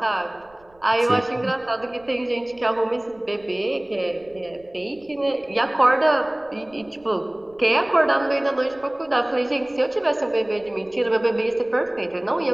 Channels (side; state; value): right; noise; rumble, 30 dB below the sound